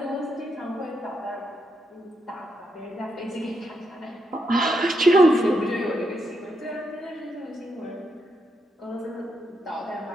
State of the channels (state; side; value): normal; both; correlation 0.81